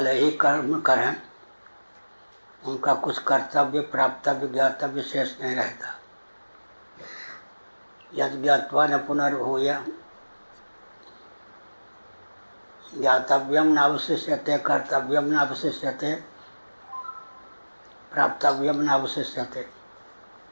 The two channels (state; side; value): inverted; both; correlation -1.00